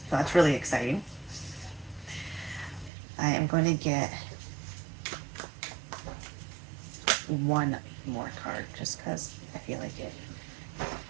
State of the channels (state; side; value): drops out; left; at 2.9 s